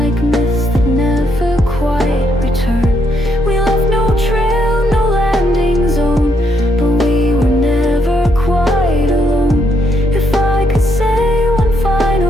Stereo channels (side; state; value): both; normal; correlation 0.75